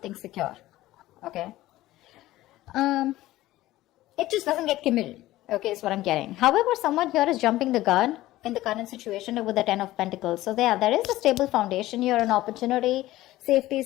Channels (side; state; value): right; quieter; 16.3 dB